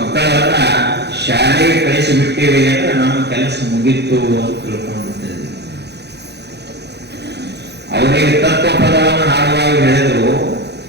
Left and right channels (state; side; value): late; left; 0.49 ms